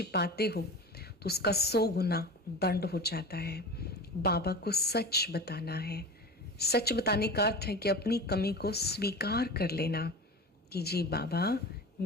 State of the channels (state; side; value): normal; both; correlation 0.32